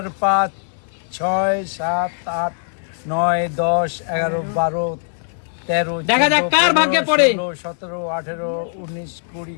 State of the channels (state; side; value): silent; right; digital silence